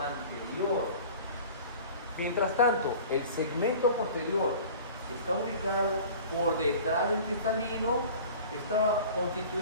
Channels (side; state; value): both; inverted; correlation -0.42